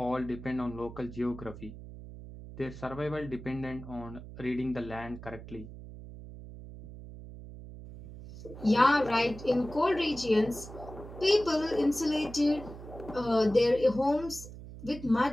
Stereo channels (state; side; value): noise; right; hum, 14 dB below the sound